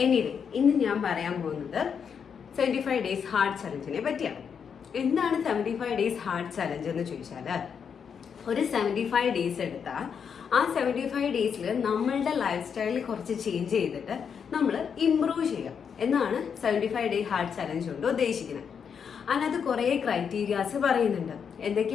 എനിവേ, ഇന്ന് ഞാൻ പറയാൻ പോകുന്നത് 75 ഡേയ്സ് ഹാർട്ട് ചലഞ്ചിനെ പറ്റിയാണ്. എന്താണ് 75 ഡേയ്സ് ഹാർട്ട് ചലഞ്ച് എന്ന് ചോദിച്ചാൽ, ഒരു 75 ഡേയ്സ് എടുത്താൽ ആ 75 ഡേയ്സിൽ നമ്മളുടെ ലൈഫ് സ്റ്റൈലിൽ കുറച്ച് ചേഞ്ച് ചെയ്തിട്ട് നമ്മൾ ഇംപ്രൂവ് ചെയ്യാം എന്നാണ് 75 ഡേ ഹാർട്ട് ചലഞ്ച് കൊണ്ട് ഉദ്ദേശിക്കുന്നത്. അതിനകത്ത് കുറേ ക്രൈറ്റീരിയാസ് പറയുന്നുണ്ട്.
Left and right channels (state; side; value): quieter; right; 7.0 dB